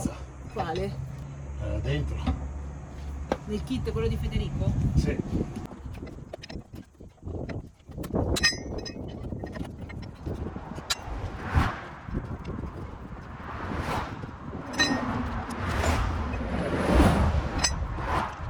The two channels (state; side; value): identical; both; correlation 1.00